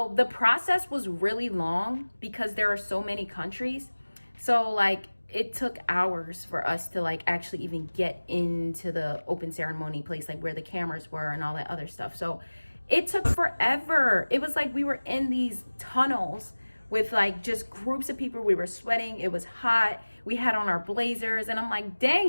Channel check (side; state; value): both; inverted; correlation -1.00